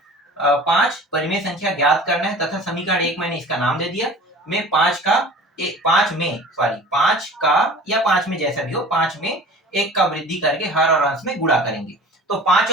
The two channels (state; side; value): normal; both; correlation 0.42